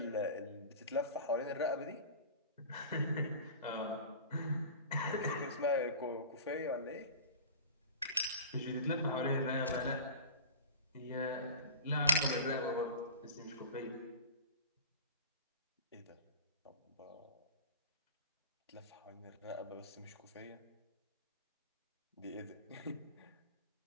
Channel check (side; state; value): both; inverted; correlation -0.34